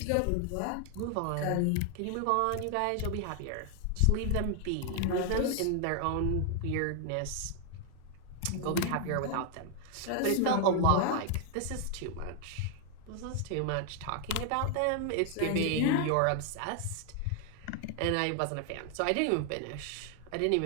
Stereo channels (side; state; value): both; different; correlation 0.00